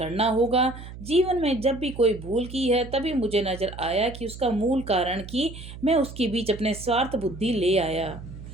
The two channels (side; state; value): right; noise; hum, 13 dB below the sound